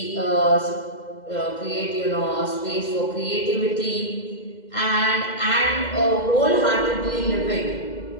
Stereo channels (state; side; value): late; right; 2.0 ms